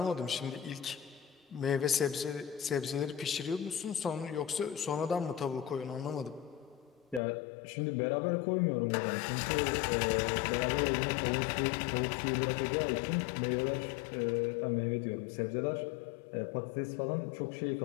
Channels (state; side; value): drops out; right; at 7.2 s